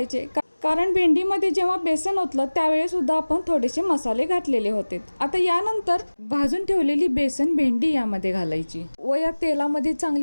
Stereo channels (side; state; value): both; inverted; correlation -1.00